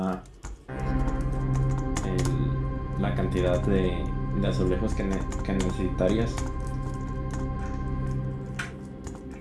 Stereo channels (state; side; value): identical; both; correlation 1.00